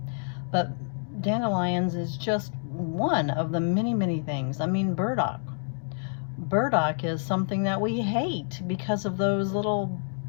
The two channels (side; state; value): right; silent; digital silence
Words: But dandelions is just one of the many things. I mean, burdock. Burdock is something that we hate because of those little